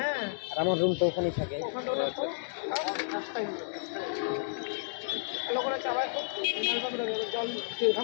আর আমার রুম তো ওখানেই থাকে। ওখানে ওরা তো নাস্তাই ভালো করে চাবাই খুব নালটা করে জল দিয়ে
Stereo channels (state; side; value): silent; right; digital silence